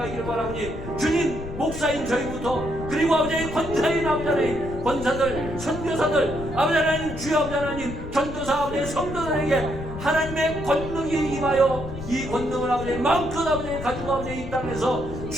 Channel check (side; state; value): left; noise; rumble, 9 dB below the sound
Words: 원하오니 주님, 목사인 저희부터 그리고 아버지 권사인 아버지 하나님 권사들, 선교사들 아버지 하나님 주여 아버지 하나님 전도사 아버지 성도들에게 하나님의 권능이 임하여 이 권능을 아버지 마음껏 아버지 가지고 아버지 이 땅에서